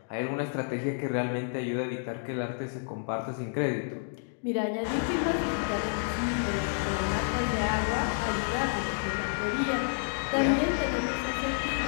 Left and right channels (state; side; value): silent; right; digital silence